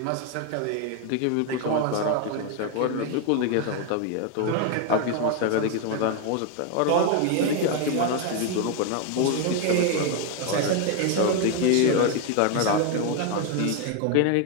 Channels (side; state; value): both; different; correlation 0.01